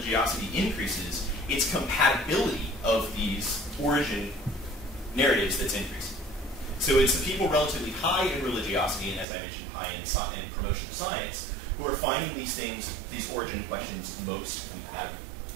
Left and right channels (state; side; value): drops out; left; at 9.2 s